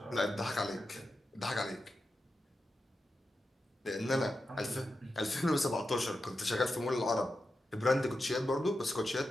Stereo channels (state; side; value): normal; both; correlation 0.90